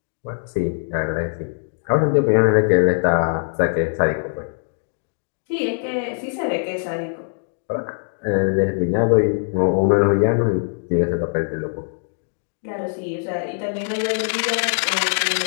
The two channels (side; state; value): right; silent; digital silence